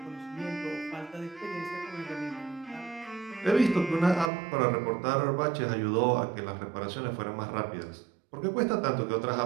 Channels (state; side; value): drops out; left; at 4.3 s